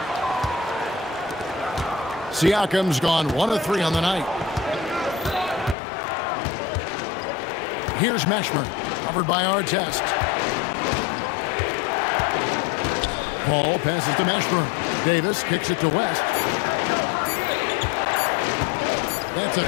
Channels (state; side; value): drops out; right; at 5.8 s